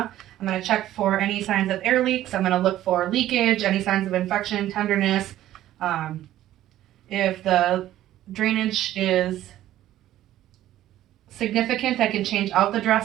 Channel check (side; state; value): left; quieter; 13.4 dB